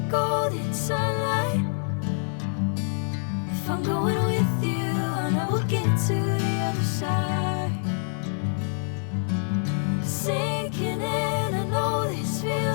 Golden sunlight. If I'm going with you, I know we'll get to the other side. Sinking in, I know this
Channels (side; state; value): right; silent; digital silence